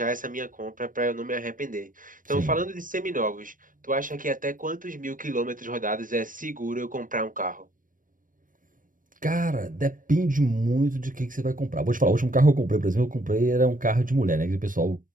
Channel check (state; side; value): late; left; 0.39 ms